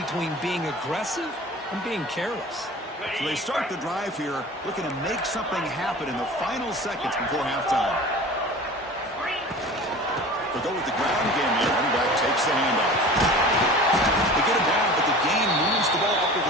being aggressive and being careless. So they start the drive here, looking to make something happen in the final seconds before halftime. They'll go with the ground game here. Running back takes the handoff. They get it down, but the gain moves the ball up to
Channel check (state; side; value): normal; both; correlation 0.39